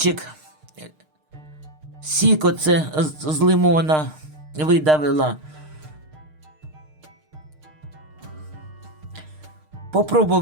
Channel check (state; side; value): late; left; 6.5 ms